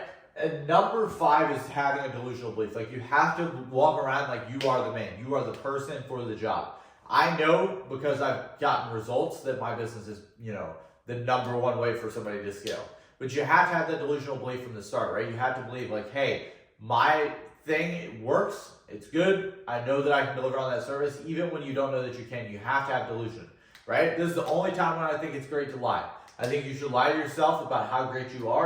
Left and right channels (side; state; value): both; identical; correlation 1.00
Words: And number 5 is having a delusional belief. Like, you have to walk around like you are the man. You are the person for the job. I know, because I've gotten results, that my business is, the number 1 way for somebody to scale. But you have to have that delusional belief from the start, right? You have to believe, like, hey, my thing, it works. It's good. I know that I can deliver on that service. Even when you don't know that you can, you have to have delusion. Right? This is the only time when I think it's great to lie. I think you should lie to yourself about how great you